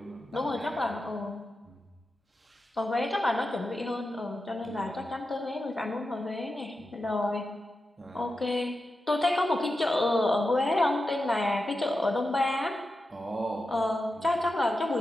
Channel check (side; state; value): both; normal; correlation 0.90